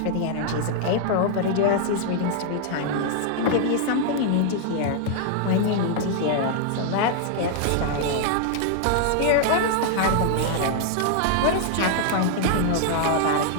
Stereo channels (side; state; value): both; different; correlation -0.01